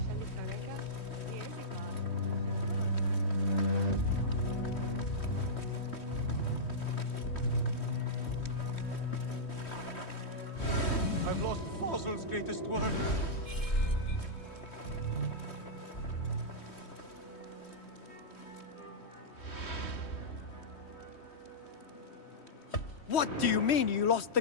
I've lost Fossil's greatest work. What do you mean you lost the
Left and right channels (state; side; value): late; right; 3.1 ms